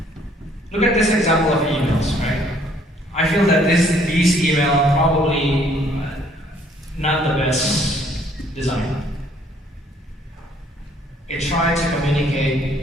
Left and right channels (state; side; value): normal; both; correlation 0.62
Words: Look at this example of emails, right? I feel that these emails probably not the best design. It tried to